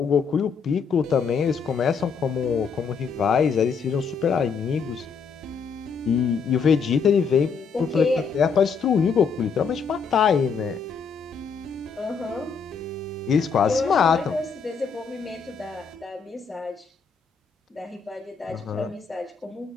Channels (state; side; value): quieter; right; 5.7 dB